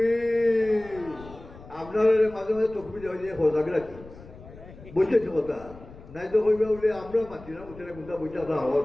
আপনারা মাঝে মাঝে চোখ বুঝে হয়ে সজাগ রাখি বুঝেছি কথা নাই তো কইবা বলে আমরা মাতি না বুঝে মুদা বুঝা হওয়া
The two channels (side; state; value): left; noise; rumble, 18 dB below the sound